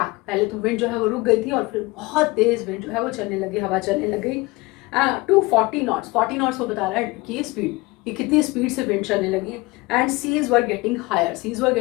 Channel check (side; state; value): right; quieter; 22.6 dB